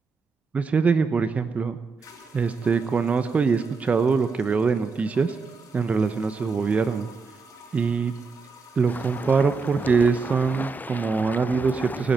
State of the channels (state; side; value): quieter; left; 4.7 dB